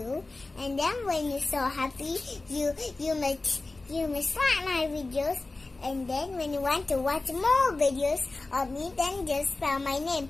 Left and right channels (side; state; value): right; quieter; 3.3 dB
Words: And then when you're so happy, you must like my videos. And then when you want to watch more videos of me, then just spell my name